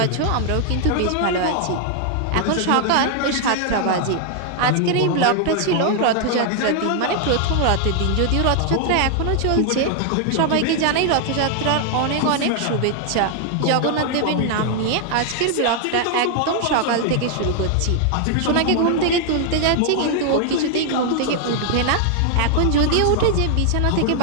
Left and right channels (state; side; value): different; both; correlation 0.00